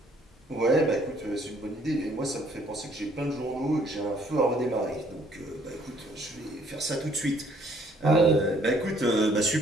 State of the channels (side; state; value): both; normal; correlation 0.63